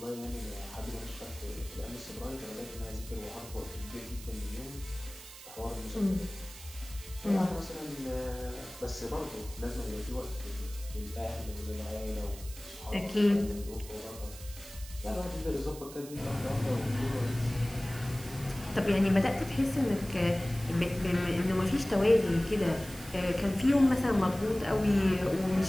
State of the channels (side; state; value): right; noise; hiss, 16 dB below the sound